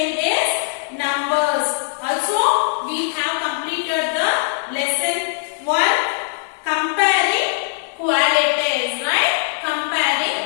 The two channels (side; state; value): right; silent; digital silence